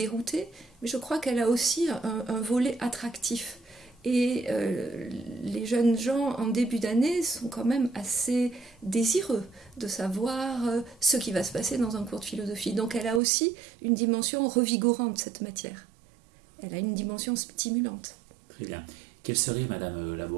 mais je crois qu'elle a aussi un volet attractif. Et les jeunes gens en début d'année sont quand même assez désireux de savoir ce qui va se passer dans un cours de philosophie. Donc elle a aussi une dimension revigorante, cette matière. Elle a une dimension stimulante. Très bien. Quel serait, Madame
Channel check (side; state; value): left; drops out; at 13.2 s